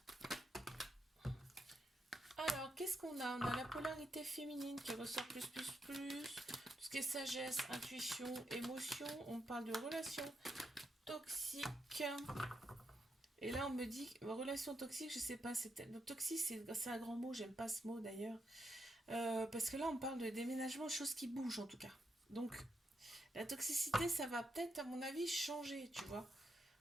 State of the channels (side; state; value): both; normal; correlation 0.82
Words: Alors, qu'est-ce qu'on a? On a la polarité féminine qui ressort plus. Tout ce qui est sagesse, intuition, émotion. On parle de relations toxiques. Et là, on me dit, relation toxique, je sais pas, toxique, c'est un grand mot, j'aime pas ce mot d'ailleurs. Parce que là, on parle de déménagement, chose qui bouge en tout cas. Donc, la toxicité, ça va peut-être, à mon avis, changer, tu vois.